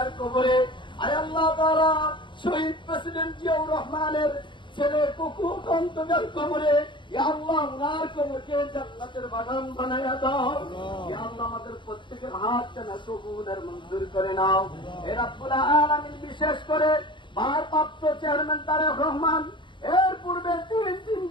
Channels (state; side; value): late; right; 0.23 ms